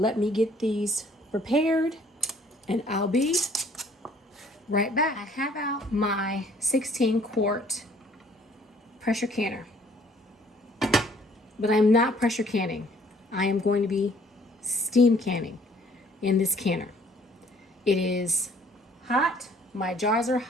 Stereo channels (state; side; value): normal; both; correlation 0.59